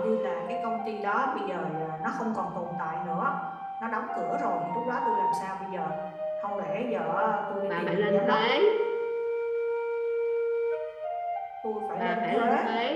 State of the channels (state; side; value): identical; both; correlation 1.00